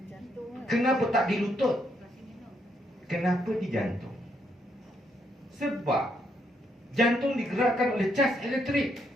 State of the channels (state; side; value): normal; both; correlation 0.76